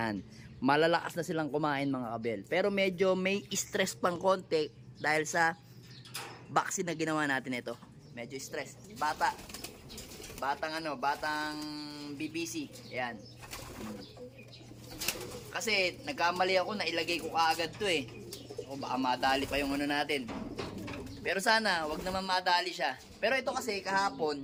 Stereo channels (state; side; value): identical; both; correlation 1.00